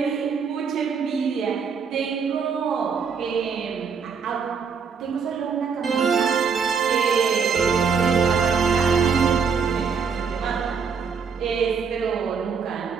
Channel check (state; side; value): quieter; left; 5.9 dB